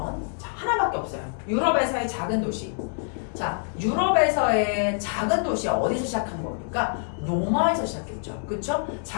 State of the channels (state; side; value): silent; right; 61 dB below the other